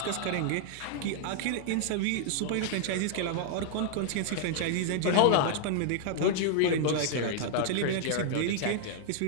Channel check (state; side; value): different; both; correlation 0.00